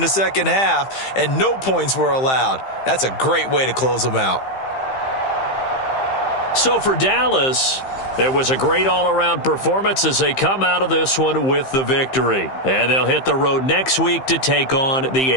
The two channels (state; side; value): late; right; 15 ms